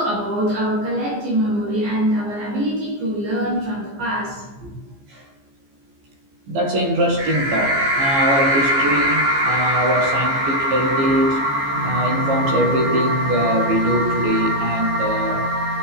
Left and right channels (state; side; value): late; left; 15 ms